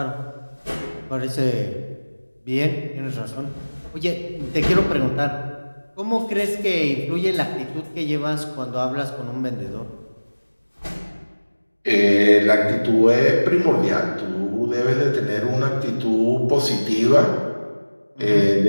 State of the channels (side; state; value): both; inverted; correlation -1.00